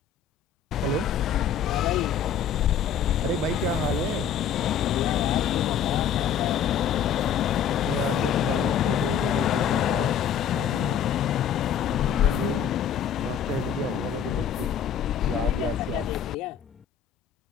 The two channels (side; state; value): right; quieter; 8.0 dB